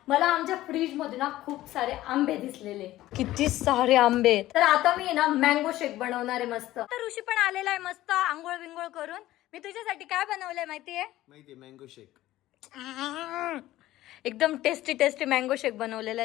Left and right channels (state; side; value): quieter; right; 15.4 dB